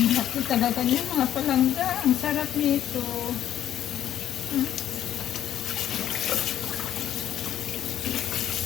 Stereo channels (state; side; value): quieter; right; 11.1 dB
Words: laki talaga niya mga palangga. Ang sarap nito.